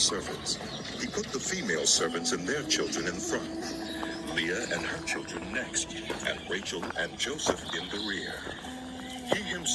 He put the female servants and their children in front, Leah and her children next, and Rachel and Joseph in the rear. He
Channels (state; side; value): identical; both; correlation 1.00